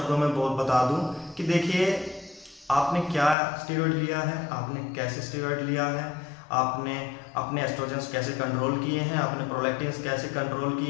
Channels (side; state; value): right; drops out; at 3.4 s